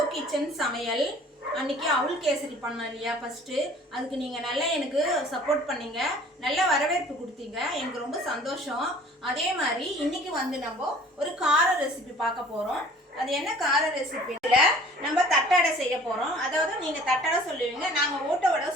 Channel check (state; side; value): normal; both; correlation 0.50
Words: கிச்சன் சமையல். அன்னைக்கு அவுல் கேசரி பண்ணேன் இல்லையா ஃபர்ஸ்ட், அதுக்கு நீங்க நல்லா எனக்கு சப்போர்ட் பண்ணீங்க, நல்ல வரவேற்பு கொடுத்தீங்க, எனக்கு ரொம்ப சந்தோஷம். அதே மாதிரி இன்னைக்கு நம்ம ஒரு கார ரெசிபி பார்க்க போறோம். அது என்ன கார ரெசிபில நம்ம தட்டடை செய்ய போறோம். அதாவது நீங்க தட்டடை சொல்லுவீங்க, நாங்க ஓட்ட வடை